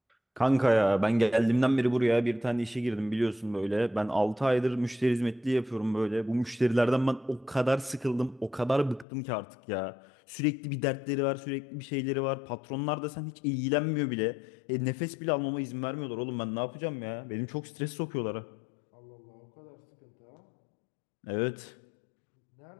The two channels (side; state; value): right; drops out; at 9.1 s